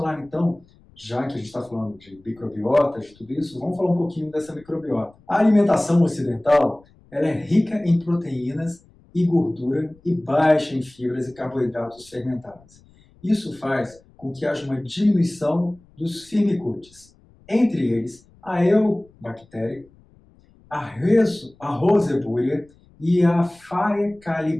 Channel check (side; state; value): left; noise; rumble, 29 dB below the sound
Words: então, já que a gente está falando de microbiota, de tudo isso, vamos falar um pouquinho dessa microbiota. A alimentação ocidental ela é rica em proteínas e gordura e baixa em fibras e carboidratos fermentáveis. Isso faz com que haja uma diminuição dos firmicutes, entre eles a Eubactéria, a Roseburia e a